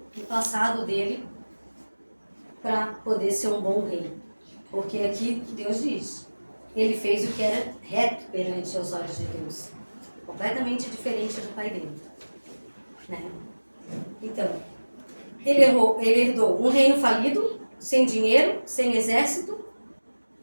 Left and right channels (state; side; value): inverted; both; correlation -1.00